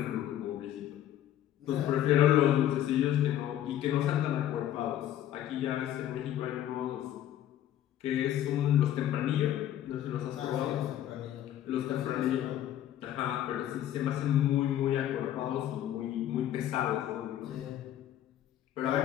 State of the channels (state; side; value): quieter; right; 11.8 dB